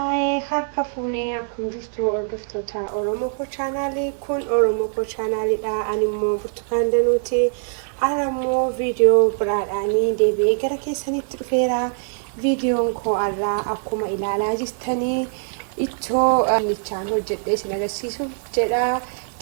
harka fuunee akkam jirtu hordoftoota Oromoo Koo chaanaalii kun Oromoo Koo chaanaaliidha. Ani immoo Burtukaan Danuuti. Ara immoo viidiyoo biraadhaanii deebi'ee gara keessanitti dhufeera. Viidiyoon koo irraa akkuma ilaalaa jirtanii ittoo dinnichaan hojjedhee isin agarsiisuuf jedha.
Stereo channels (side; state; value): left; silent; digital silence